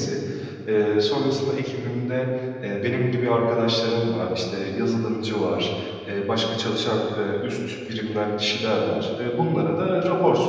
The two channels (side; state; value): both; identical; correlation 1.00